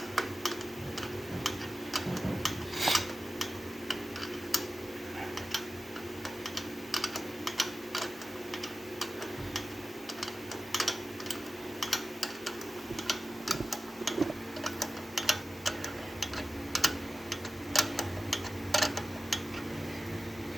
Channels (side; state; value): both; normal; correlation 0.94